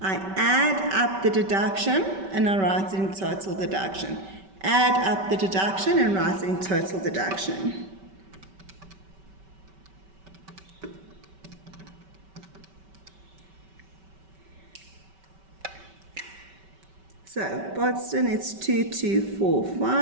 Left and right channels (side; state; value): left; late; 5.2 ms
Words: add up the deduction and I write it in total deduction. Add up the deduction and write it in total deduction. So, Boston, it's